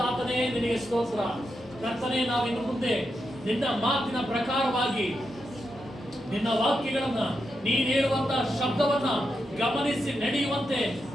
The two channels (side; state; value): both; normal; correlation 0.85